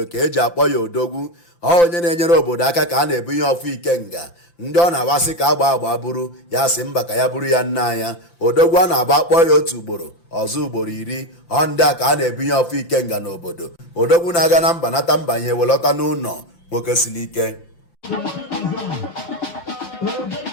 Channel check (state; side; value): late; right; 5.8 ms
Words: ka eji akpọ ya odogwu. Onye na-enyere obodo aka ka a na-ebunye ọfụ Ikenga. Ndị ọ na-agbasị ka agba bụrụ ya sị mba ka ya bụrụ ya nna anya. Odogwu a na-agba akpọ ya otu ugboro ọzọ ugboro 10. Ndị a ka a na-ebunye ọfụ Ikenga n'obodo. Odogwu na-aga na mba nata mba ihe welọta n'ụlọ nwoke siri ike.